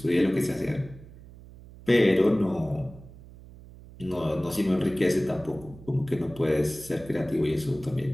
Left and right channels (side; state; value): right; noise; hum, 19 dB below the sound